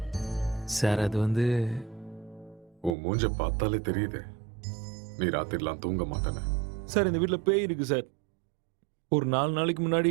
சார் அது வந்து உன் மூஞ்ச பார்த்தாலே தெரியுது நீ ராத்திரிலாம் தூங்க மாட்டேன்னு. சார் இந்த வீட்டில் பேய் இருக்கு சார். ஒரு 4 நாளைக்கு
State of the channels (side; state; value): left; drops out; at 3.0 s